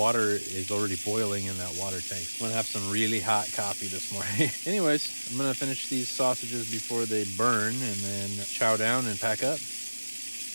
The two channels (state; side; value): inverted; both; correlation -1.00